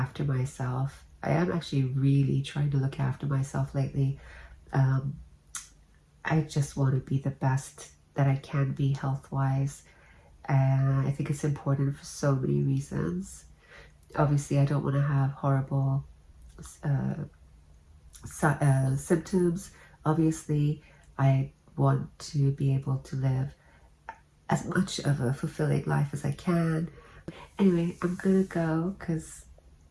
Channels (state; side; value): identical; both; correlation 1.00